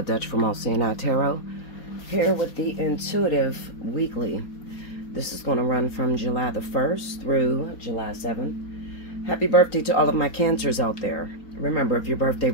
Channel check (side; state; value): right; late; 4.2 ms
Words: Dutch from Allseeingeyetarot, here with the Intuitive Weekly. This is going to run from July the 1st through July 7th. Happy birthday to all of my Cancers out there. Remember, if your birthday